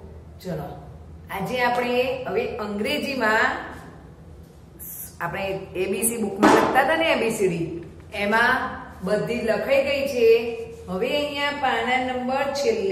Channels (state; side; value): identical; both; correlation 1.00